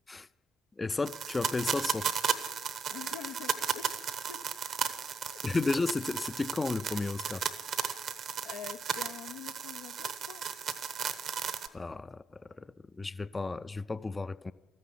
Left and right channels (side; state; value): both; normal; correlation 0.80